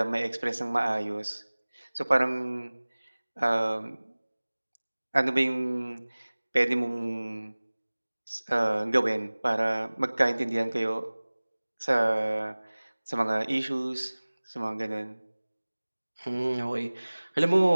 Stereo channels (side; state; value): both; inverted; correlation -1.00